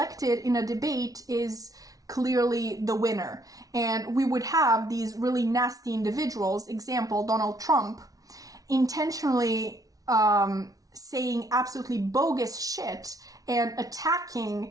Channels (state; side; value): late; left; 0.18 ms